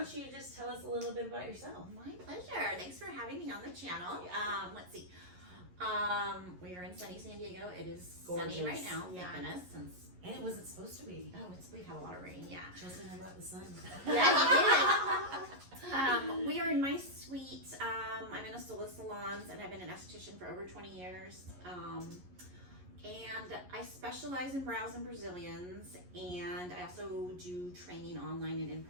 you just tell us a little bit about yourself? My pleasure. Thanks for having me on the channel. Let's see. We are in sunny San Diego. It is gorgeous. Sunny right now. Thank goodness. Since And it wasn't supposed to be. oh, we've had a lot of rain. Yeah. Chelsea and I brought the sun. Yeah, you did. We are in my suite. I'm in a Sola Salons, and I've been an esthetician for over 20 years. And I specialize in brows and Brazilians, and I also do training online and in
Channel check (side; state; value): left; late; 11 ms